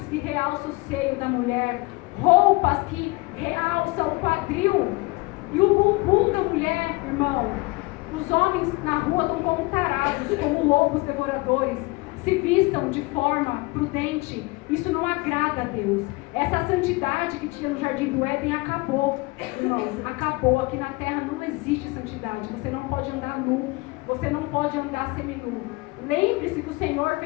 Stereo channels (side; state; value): right; quieter; 24.2 dB